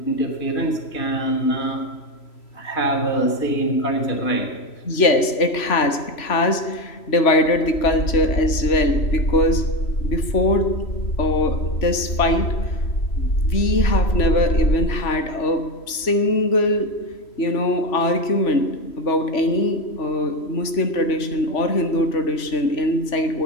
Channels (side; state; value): right; late; 3.0 ms